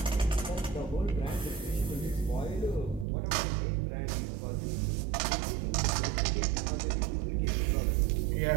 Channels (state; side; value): drops out; left; at 3.1 s